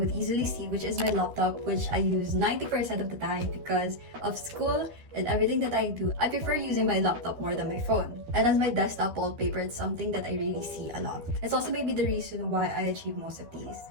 easily see, which is my laptop, which I use 90% of the time because of school and everything that I do. I prefer using my laptop more than my phone. And as my desktop wallpaper, it's something that I really see a lot. It's also maybe the reason why I achieve most of these.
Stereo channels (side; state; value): left; late; 12 ms